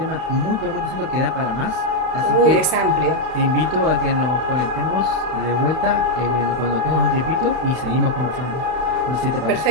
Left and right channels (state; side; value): late; left; 32 ms